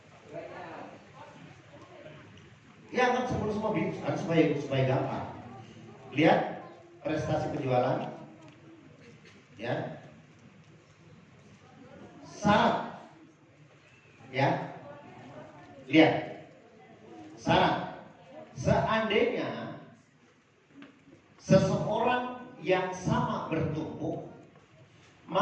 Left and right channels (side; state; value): both; identical; correlation 1.00